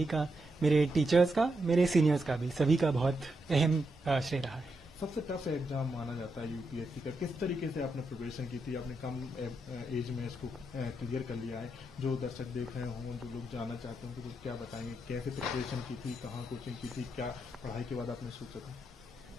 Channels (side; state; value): both; normal; correlation 0.83